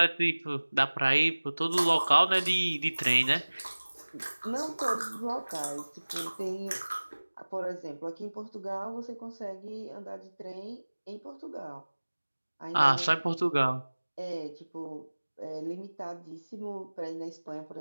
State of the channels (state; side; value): inverted; both; correlation -1.00